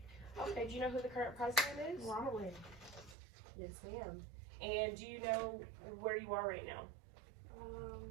Okay, do you know who the current president is? Ronald. Yes, ma'am. And do you know where you are right now? I'm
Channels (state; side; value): drops out; left; at 3.2 s